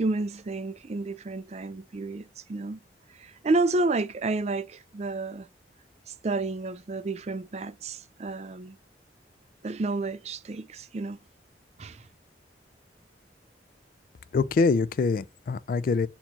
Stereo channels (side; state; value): both; normal; correlation 0.51